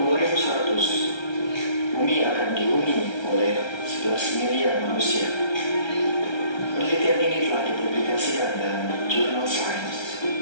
bumi akan dihuni oleh 11 miliar manusia. Penelitian ini telah dipublikasikan dalam jurnal Science.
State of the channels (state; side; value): late; right; 1.3 ms